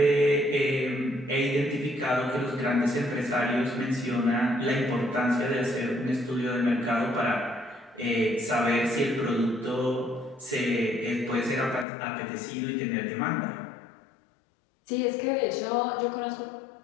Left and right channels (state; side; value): drops out; right; at 11.9 s